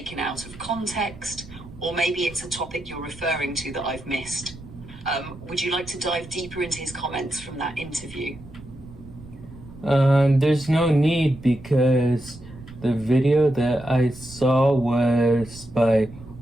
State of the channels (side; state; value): right; noise; rumble, 17 dB below the sound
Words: out of context, or maybe it's a topic you're referring to that I've missed. Would you like to dive deeper into his comments from that interview? There's no need, because the video that I saw was by